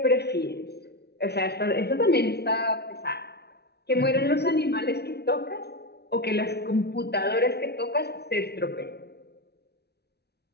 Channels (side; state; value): right; late; 0.48 ms